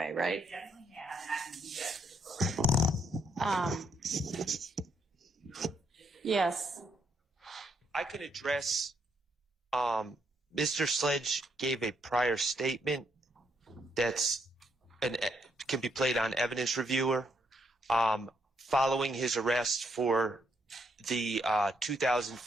right? Definitely have, and I can do that for the program. Yes. I can address, Mr. Sledge gave a prior statement that's can be played on evidence reviewer, following his arrest for the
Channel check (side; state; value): both; normal; correlation 0.75